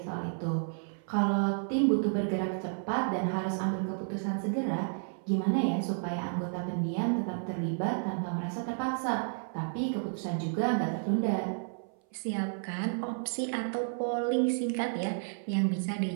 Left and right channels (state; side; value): silent; left; 57 dB below the other